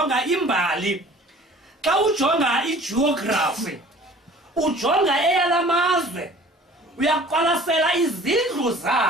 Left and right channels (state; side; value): normal; both; correlation 0.48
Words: imbali, xa ujonga igeography, ujonga eyalamazwe, uyaqwalasela izindlu